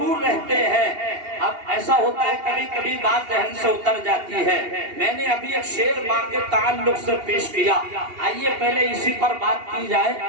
رہتے ہیں۔ اب ایسا ہوتا ہے کبھی کبھی بات ذہن سے اتر جاتی ہے۔ میں نے ابھی ایک شعر ماں کے تعلق سے پیش کیا، آئیے پہلے اسی پر بات کی جائے،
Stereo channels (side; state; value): left; late; 2.8 ms